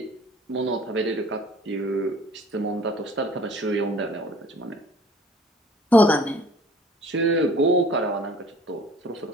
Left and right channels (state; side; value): normal; both; correlation 0.51